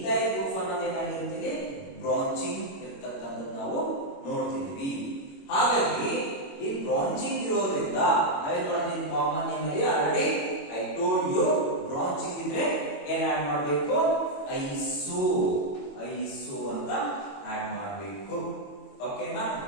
group ಅನ್ನೋದು ಏನಾಗಿರುತ್ತೆ branching ಇರತಕ್ಕಂಥದ್ದು ನಾವು ನೋಡ್ತಿದ್ವಿ. ಹಾಗಾಗಿ ಈ branching ಇರೋದ್ರಿಂದ ನಾವೇನ್ ಮಾಡ್ತೀವಿ ಕಾಮನ್ ನೇಮ್ ಅಲ್ಲಿ already I told you branching ಇದ್ರೆ ಏನ್ ಆಡ್ ಮಾಡಬೇಕು ಐಸೋ ಅಂತ ಆಡ್ ಮಾಡಬೇಕು. ಓಕೆನಾ?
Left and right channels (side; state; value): right; late; 21 ms